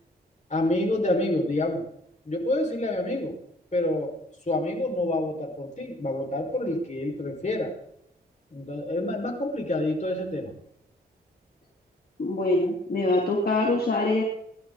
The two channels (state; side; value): normal; both; correlation 0.57